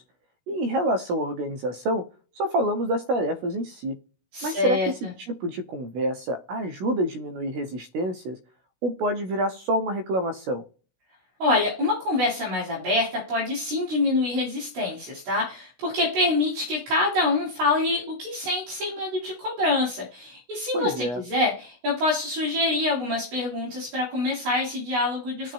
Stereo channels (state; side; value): late; left; 16 ms